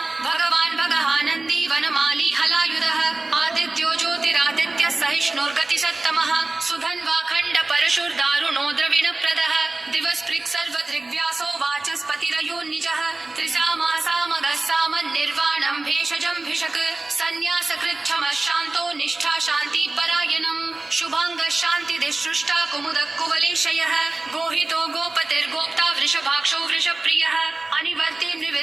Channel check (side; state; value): left; quieter; 3.1 dB